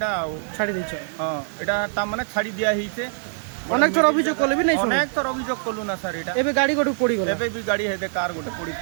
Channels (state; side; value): silent; left; digital silence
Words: ছাড়ি দিছ হ্যাঁ এটা তা মানে ছাড়ি দিয়া হইছে অনেক থর অভিযোগ করলে বি নাই অনেক থর অভিযোগ করলু না স্যার এটা এবে গাড়ি গটু পড়ি গলা এবে भी গাড়ি হেদে কার গোটে পড়ি